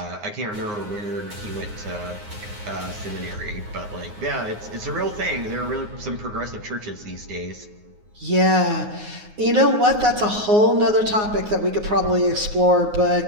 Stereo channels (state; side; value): late; left; 9.6 ms